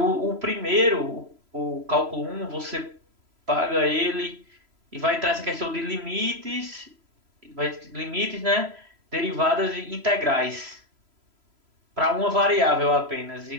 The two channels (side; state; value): left; late; 3.0 ms